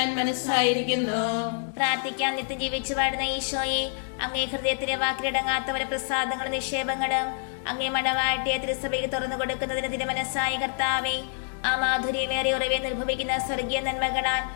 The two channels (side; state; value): right; silent; digital silence